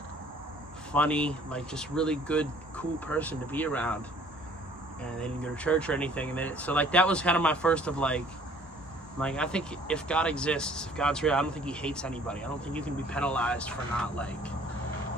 funny, like, just really good, cool person to be around. And they didn't go to church or anything. And so, like, that was kind of my first of, like, I think if God exists, if God's real, I don't think he hates anybody. I don't think you can be penalized for not, like,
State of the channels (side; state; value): both; normal; correlation 0.56